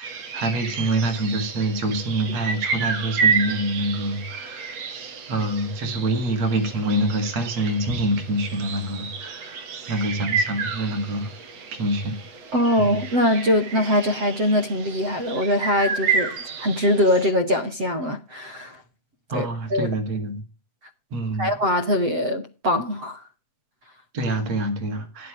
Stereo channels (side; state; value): left; late; 7.8 ms